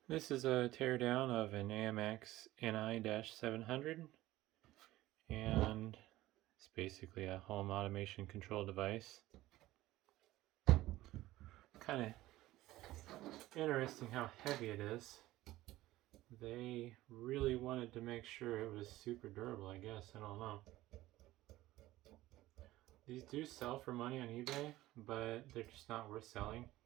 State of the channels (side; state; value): left; quieter; 16.6 dB